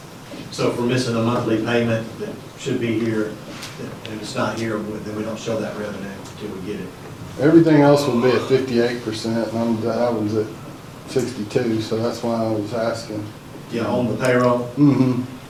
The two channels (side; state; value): both; identical; correlation 1.00